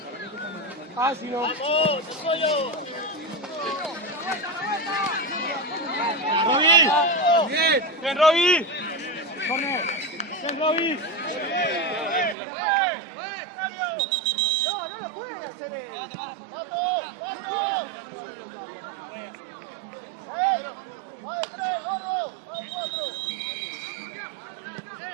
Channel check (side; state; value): left; drops out; at 12.4 s